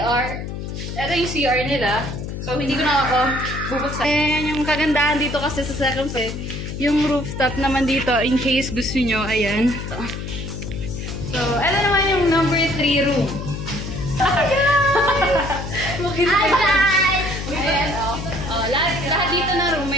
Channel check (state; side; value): noise; left; hum, 7 dB below the sound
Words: Ito yung CR nila. So, hindi ko na ako bubuksan. Ayan, yung kagandahan dito kasi sa second floor. Yung rooftop naman dito, in case gusto nyo, ayan. So, ito naman yung number 3 room. Hi guys! Ayan, lahat dito na room